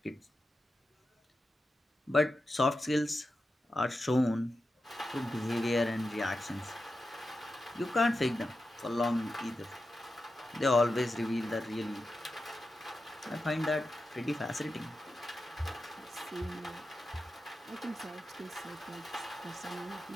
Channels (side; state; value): both; normal; correlation 0.90